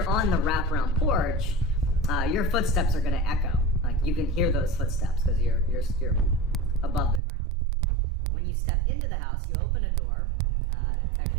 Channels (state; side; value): drops out; left; at 7.2 s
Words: on the wraparound porch, your footsteps are gonna echo. Like, you can hear those footsteps because you're above the ground. When you step into the house, you open a door. It